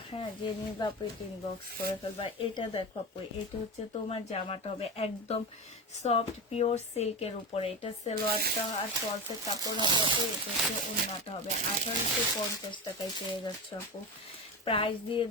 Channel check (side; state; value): both; normal; correlation 0.22